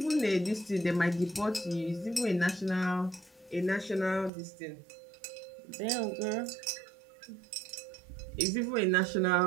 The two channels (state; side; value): drops out; left; at 4.3 s